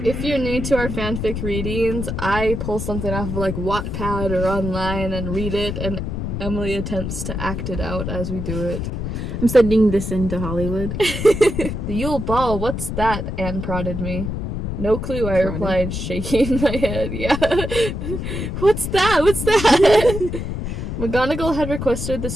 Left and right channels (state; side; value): noise; left; rumble, 4 dB below the sound